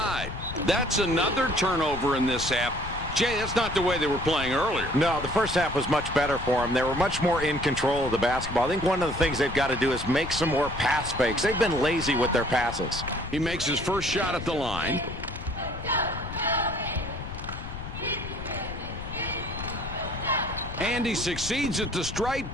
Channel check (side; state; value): left; noise; rumble, 9 dB below the sound